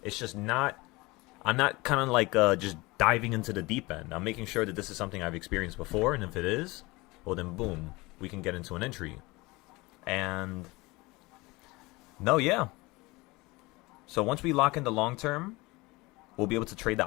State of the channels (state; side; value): quieter; right; 22.8 dB